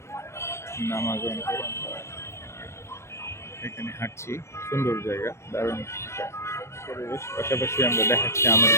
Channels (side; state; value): right; late; 0.13 ms